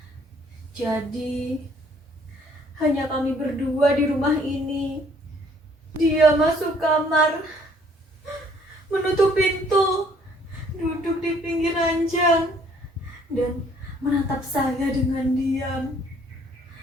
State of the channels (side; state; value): both; normal; correlation 0.61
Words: Jadi hanya kami berdua di rumah ini. Dia masuk kamar, menutup pintu, duduk di pinggir ranjang, dan menatap saya dengan diam.